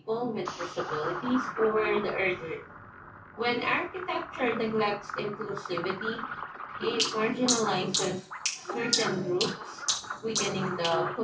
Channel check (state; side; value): identical; both; correlation 1.00